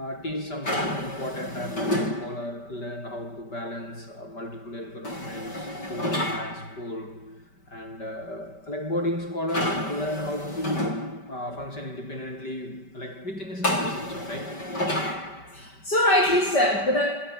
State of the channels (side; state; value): right; late; 5.1 ms